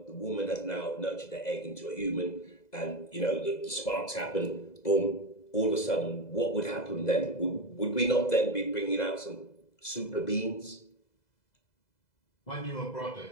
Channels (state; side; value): late; right; 2.0 ms